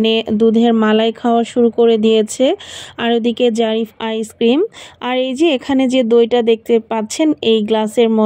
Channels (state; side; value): identical; both; correlation 1.00